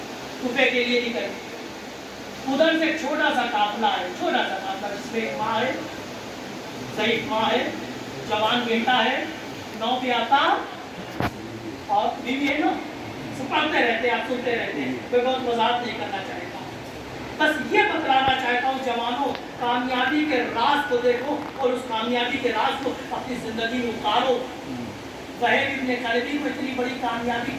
कुफे के लिए निकले। उधर से छोटा सा काफिला है, छोटा सा काफिला, जिसमें एक माँ है, ज़ईफ़ माँ है, जवान बेटा है, 9 पे आता और बीवी है ना, सब पढ़ते रहते हैं, आप सुनते रहते हैं। कोई बहुत वजाहत नहीं करना चाहता, बस ये बतलाना चाहता हूँ जवानों, कामयाबी के राज को देखो और उस कामयाबी के राज को अपनी जिंदगी में उतारो। वहीद इब्न करबी को इतनी बड़ी कामयाबी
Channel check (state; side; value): identical; both; correlation 1.00